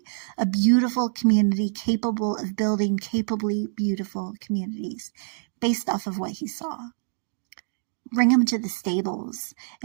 a beautiful community capable of building capably beautiful communities based off of what he saw. Bring him to the stables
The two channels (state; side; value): silent; left; digital silence